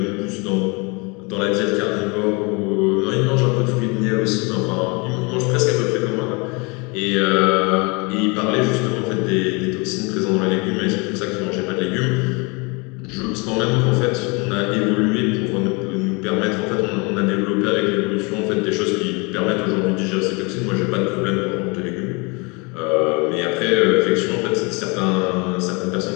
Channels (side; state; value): right; quieter; 29.5 dB